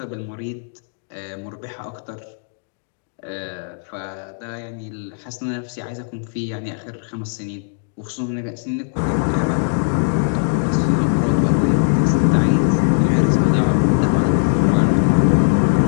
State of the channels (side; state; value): right; silent; digital silence